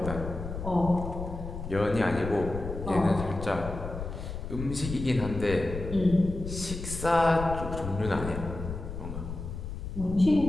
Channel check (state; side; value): noise; left; rumble, 7 dB below the sound